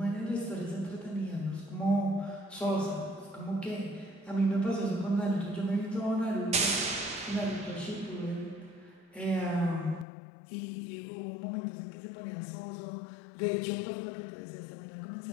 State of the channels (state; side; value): drops out; right; at 10.1 s